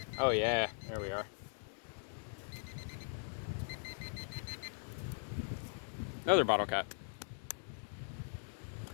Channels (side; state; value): right; silent; digital silence